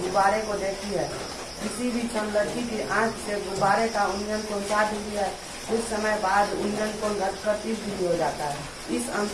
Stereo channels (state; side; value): identical; both; correlation 1.00